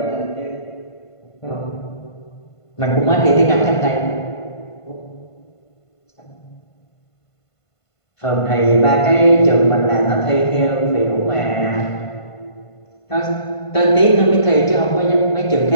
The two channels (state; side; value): late; right; 1.5 ms